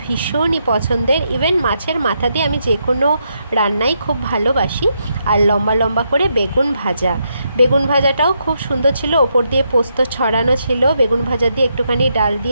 ভীষণই পছন্দের। ইভেন মাছের মাথা দিয়ে আমি যে কোনো রান্নাই খুব ভালোবাসি। আর লম্বা লম্বা করে বেগুন ভাজা, বেগুন ভাজাটাও খুব সুন্দর ছিল, ওপর দিয়ে পোস্ত ছড়ানো ছিল। বেগুন ভাজা দিয়ে একটুখানি ডাল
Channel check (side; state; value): both; inverted; correlation -0.80